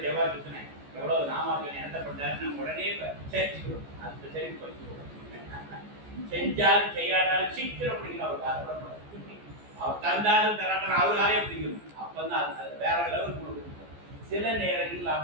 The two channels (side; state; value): left; late; 14 ms